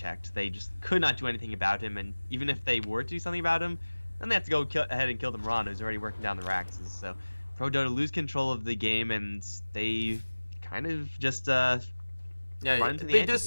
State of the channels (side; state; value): both; inverted; correlation -1.00